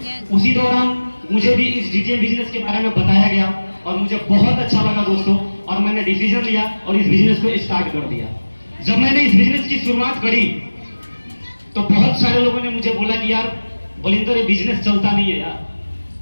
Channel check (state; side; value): inverted; both; correlation -1.00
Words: उसी दौरान मुझे भी इस डीडीएम बिजनेस के बारे में बताया गया और मुझे बहुत अच्छा लगा दोस्तों, और मैंने डिसीजन लिया और इस बिजनेस को स्टार्ट कर दिया। जब मैंने इस बिजनेस की शुरुआत करी तो बहुत सारे लोगों ने मुझे बोला कि यार बलिंदर, ये बिजनेस चलता नहीं है यार,